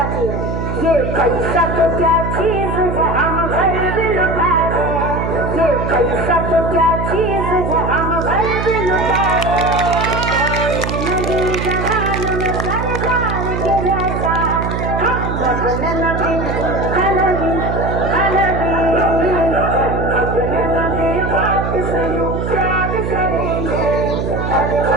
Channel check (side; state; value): right; noise; hum, 3 dB below the sound